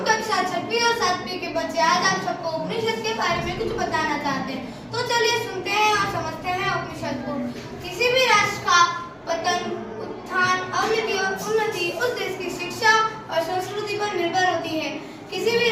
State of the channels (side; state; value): both; identical; correlation 1.00